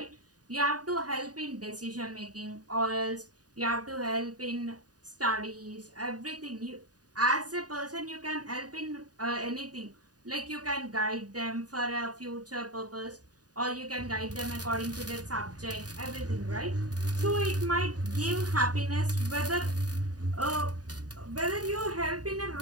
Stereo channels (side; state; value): left; late; 0.68 ms